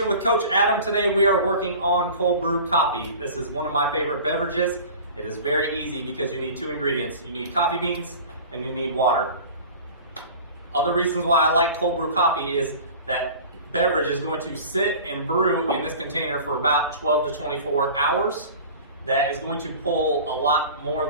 with Coach Adam. Today we are working on cold brew coffee. This is one of my favorite beverages. It is very easy because you need two ingredients. You need coffee beans and you need water. Other reasons why I like cold brew coffee is that beverage is going to sit and brew in this container for about 12 to 24 hours. That is going to pull a lot more of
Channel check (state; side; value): inverted; both; correlation -0.40